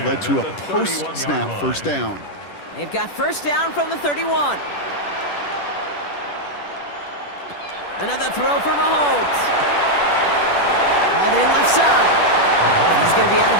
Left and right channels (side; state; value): right; late; 10 ms